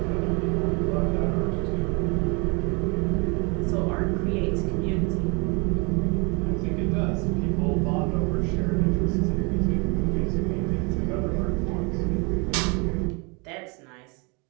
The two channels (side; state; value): left; quieter; 31.2 dB